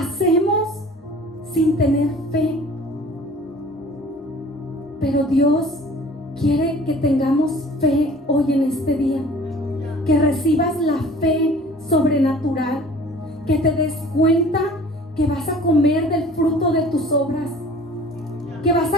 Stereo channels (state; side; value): normal; both; correlation 0.48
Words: sin tener fe. Pero Dios quiere que tengamos fe hoy en este día, que recibas la fe sobrenatural, que te des cuenta que vas a comer del fruto de tus obras, que vas